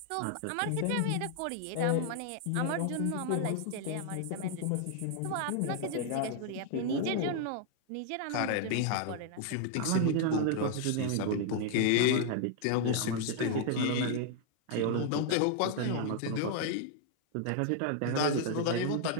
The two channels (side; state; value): both; different; correlation 0.00